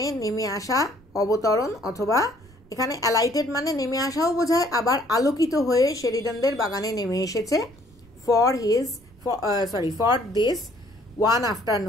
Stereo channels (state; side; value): noise; right; rumble, 26 dB below the sound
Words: নেমে আসা, অবতরণ, অথবা এখানে অ্যালাইটেড মানে নেমে আসাও বোঝায়, আবার আলোকিত হয়ে শেরিডানদের বাগানে নেমে এসেছে। ফর দিস ওয়ান